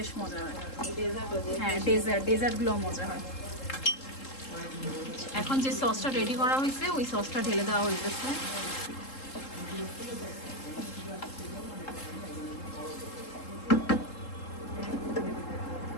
মজা হয়। হ্যাঁ, ডেজার্টগুলো মজা হয়। এখন যে সসটা রেডি করা হয়েছে, ওই সসটা ঢেলে দেওয়া হয়েছে।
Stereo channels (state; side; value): late; right; 3.7 ms